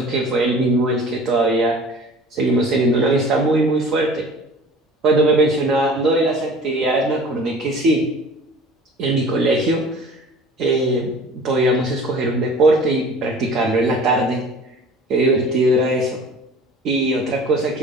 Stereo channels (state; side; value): normal; both; correlation 0.44